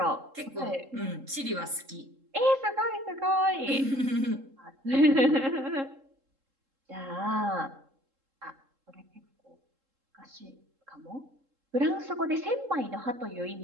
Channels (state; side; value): late; left; 3.7 ms